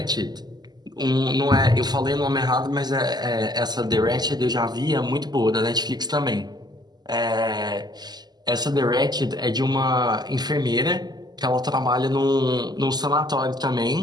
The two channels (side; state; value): left; late; 0.20 ms